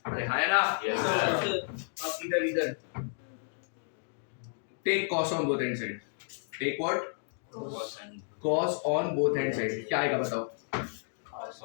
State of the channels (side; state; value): right; silent; digital silence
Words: अरे हाँ ना? अब इधर take cos on both end side. Take what? Cos on both end side. क्या आएगा बताओ?